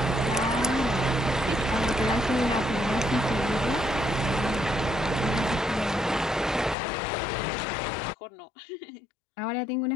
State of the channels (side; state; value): right; drops out; at 6.8 s